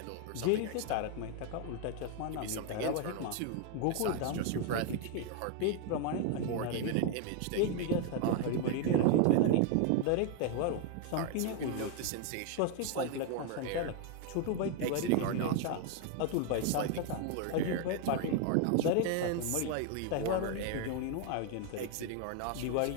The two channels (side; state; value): both; different; correlation 0.01